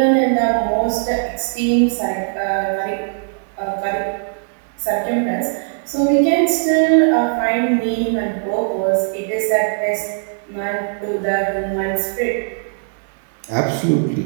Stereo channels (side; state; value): left; silent; digital silence